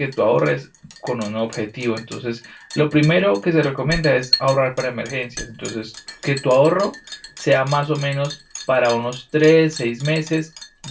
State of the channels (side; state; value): both; identical; correlation 1.00